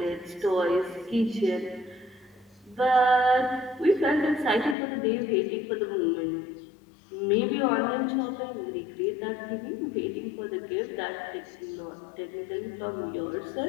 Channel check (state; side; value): drops out; right; at 4.8 s